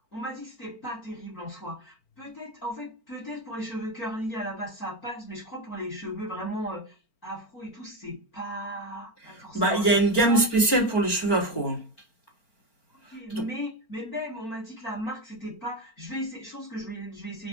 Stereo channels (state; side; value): late; right; 4.4 ms